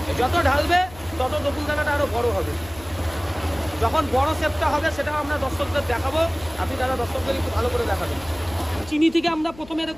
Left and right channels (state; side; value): noise; left; hum, 19 dB below the sound